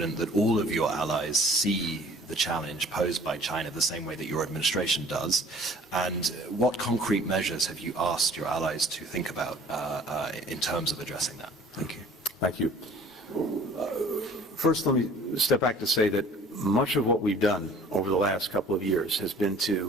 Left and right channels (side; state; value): both; normal; correlation 0.51